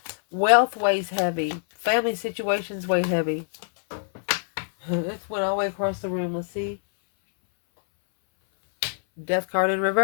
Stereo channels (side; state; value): right; silent; 59 dB below the other